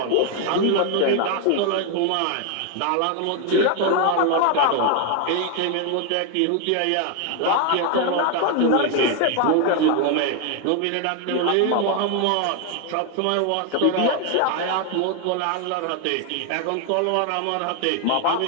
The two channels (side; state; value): both; different; correlation 0.01